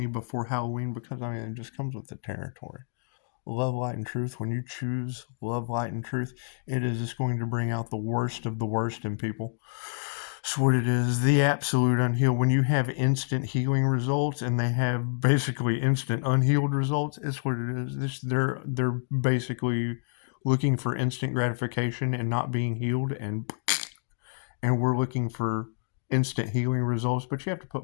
before Halloween, because I mean it just comes with the territory. Love, light, and truth. When you choose love, light, and truth, it is just going to bring out the worst of the worst in people. It's what it is. The absolute unhealed. When you have instant healing results and they have basically instant unhealed results, it's what it is. They're basically looking for instant gratification and not being healed, and we're looking for instant healing results. But you have to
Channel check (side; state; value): right; silent; digital silence